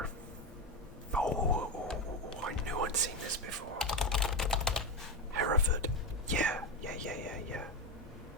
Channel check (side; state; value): both; normal; correlation 0.14